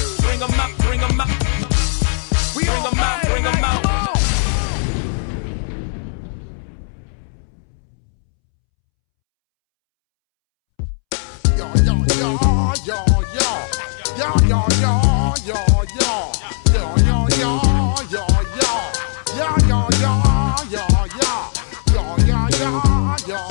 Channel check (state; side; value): silent; right; 67 dB below the other